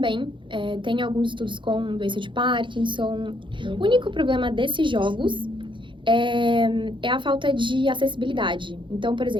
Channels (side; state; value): left; late; 0.24 ms